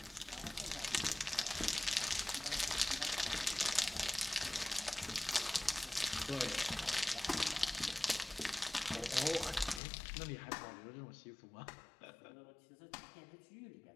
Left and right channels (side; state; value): right; drops out; at 9.8 s